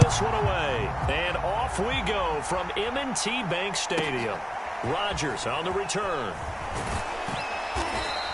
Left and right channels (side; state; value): both; identical; correlation 1.00